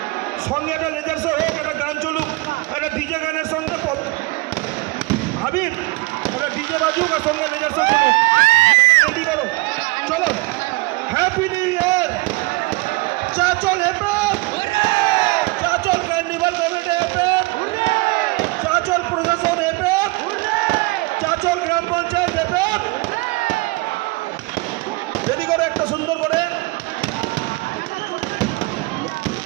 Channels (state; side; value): quieter; left; 23.1 dB